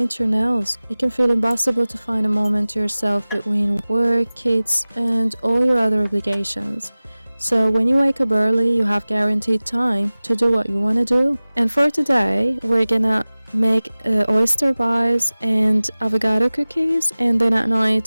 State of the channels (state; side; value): inverted; both; correlation -0.98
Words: your nails, it can feel impossible to find a moment to yourself between work, kids, and all your other obligations. So when you wake up early, you have guaranteed time to do what you want to do. And for today, we're gonna make oyster pies and avocado cookies, and then at